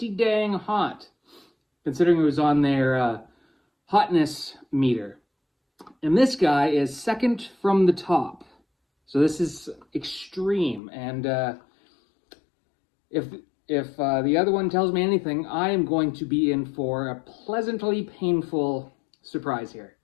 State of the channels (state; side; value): drops out; right; at 10.8 s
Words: dang hot, considering it was on their hotness meter. And this guy is second from the top, so this is extreme. And if the other one tells me anything, I am going to be in for a pleasantly painful surprise here.